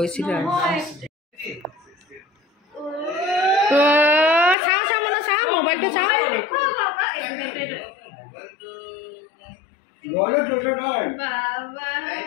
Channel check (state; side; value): drops out; right; at 4.5 s